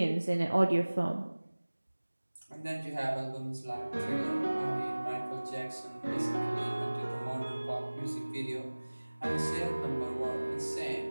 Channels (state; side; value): inverted; both; correlation -1.00